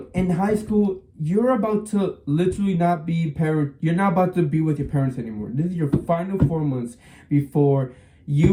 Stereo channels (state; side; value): identical; both; correlation 1.00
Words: in high school, you're about to literally not be you're not about to be with your parents anymore. This is your final 4 months before